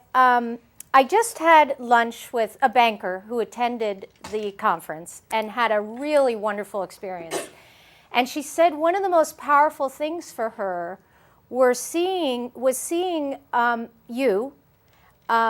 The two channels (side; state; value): both; identical; correlation 1.00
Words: I just had lunch with a banker who attended the conference and had a really wonderful experience. And she said one of the most powerful things for her was seeing you,